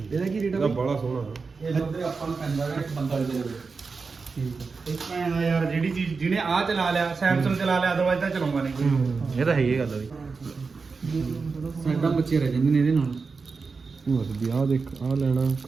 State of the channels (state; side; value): quieter; left; 4.6 dB